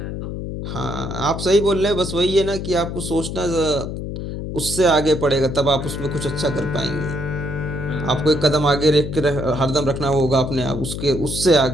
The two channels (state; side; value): noise; left; hum, 6 dB below the sound